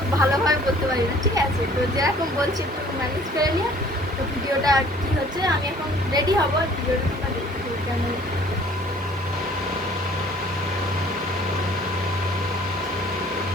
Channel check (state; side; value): normal; both; correlation 0.54